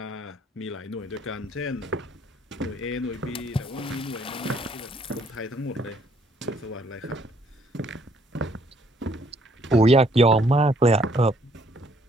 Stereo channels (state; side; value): normal; both; correlation 0.65